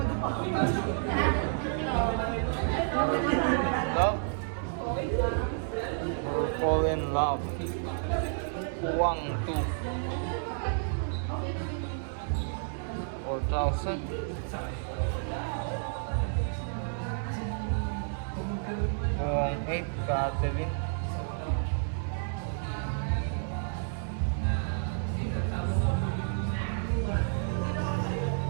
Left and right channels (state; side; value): silent; left; 57 dB below the other